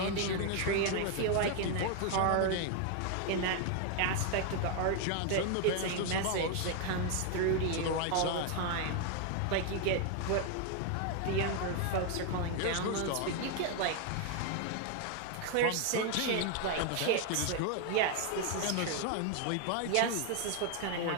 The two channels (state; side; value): different; both; correlation 0.01